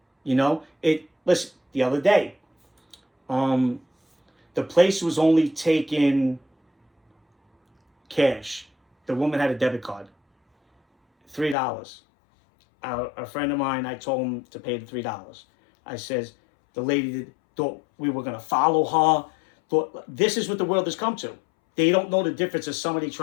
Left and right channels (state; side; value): drops out; right; at 11.6 s